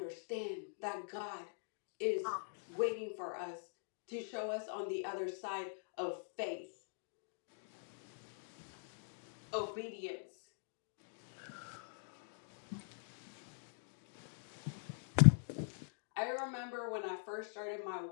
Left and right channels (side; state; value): right; silent; digital silence